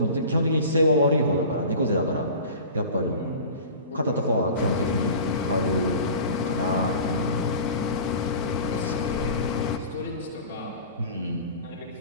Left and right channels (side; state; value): both; inverted; correlation -0.38